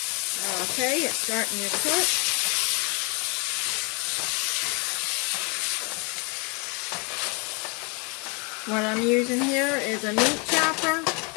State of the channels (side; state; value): right; quieter; 31.5 dB